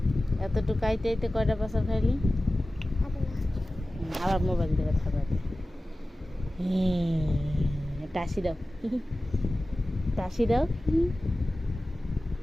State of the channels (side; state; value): both; normal; correlation 0.96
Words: এতটুকু আইতে আইতে কয়টা পাশা খাইলি আবার মোবাইল থেকে খাবার টাসি দাও টাসি দাও